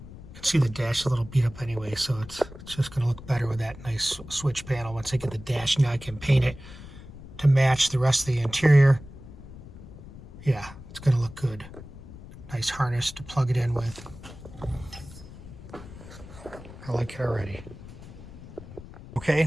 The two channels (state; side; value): noise; left; rumble, 16 dB below the sound